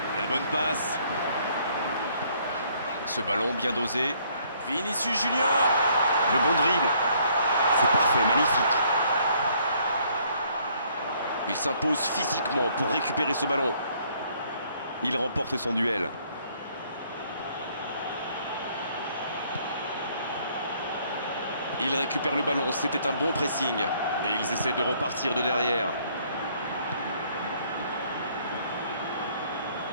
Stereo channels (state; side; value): inverted; both; correlation -0.64